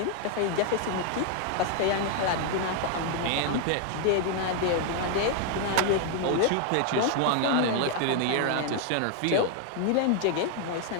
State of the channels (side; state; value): both; different; correlation 0.00